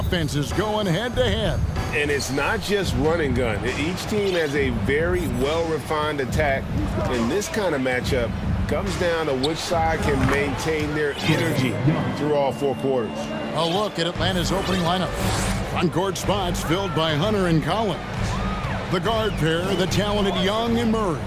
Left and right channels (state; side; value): identical; both; correlation 1.00